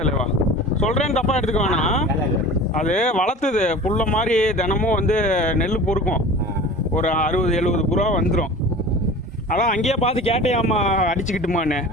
தலைவா, சொல்றேன்னு தப்பா எடுத்துக்க வேணாம். அது வளர்த்துது புல்ல மாதிரி தினமும் வந்து நெல் பொறுக்கும். ஒரு 60-70 புறா வந்துடும். அதான் அங்கேயே பார்த்து கேட்டேயாம்மா அடிச்சுக்கிட்டுமான்னு.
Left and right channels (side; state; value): both; normal; correlation 0.38